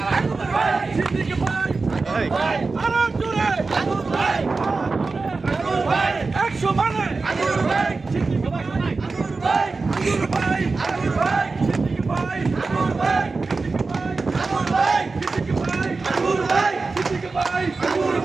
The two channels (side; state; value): left; quieter; 4.0 dB